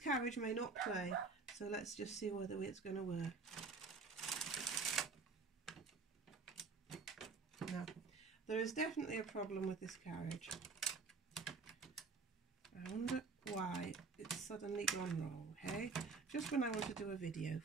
may not play, so let's just see whether it's going to work. No, there is definitely a problem with this carriage. I wonder why it's suddenly gone wrong, hey? Just when I want to do a video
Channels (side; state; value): left; quieter; 4.5 dB